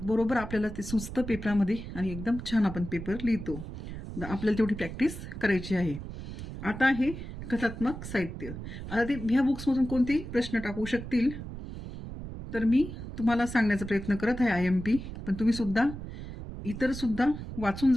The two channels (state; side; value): noise; right; rumble, 9 dB below the sound